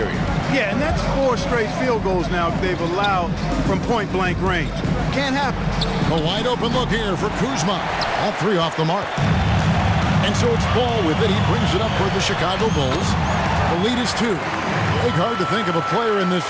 Yeah, and that's 4 straight field goals now they've allowed from point-blank range. Can't happen. A wide open look here for Kuzma. That 3 off the mark. And so it's Ball with it. He brings it up for the Chicago Bulls. The lead is 2. Big hard to think of a player in this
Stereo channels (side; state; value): both; identical; correlation 1.00